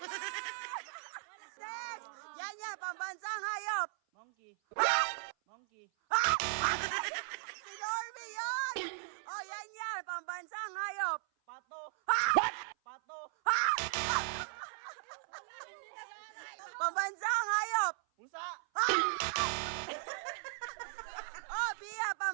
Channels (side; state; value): left; silent; 53 dB below the other